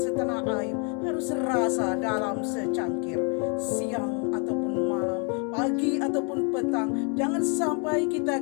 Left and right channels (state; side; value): quieter; right; 37.5 dB